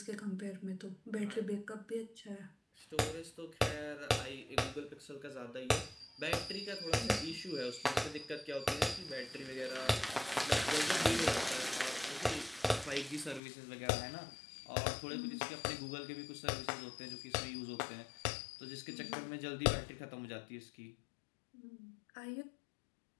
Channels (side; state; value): right; drops out; at 13.4 s